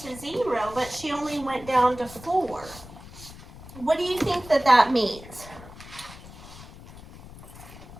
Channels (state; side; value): noise; left; rumble, 17 dB below the sound